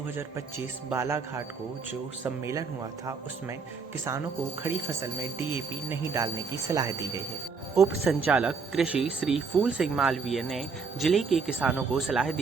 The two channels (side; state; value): left; quieter; 5.0 dB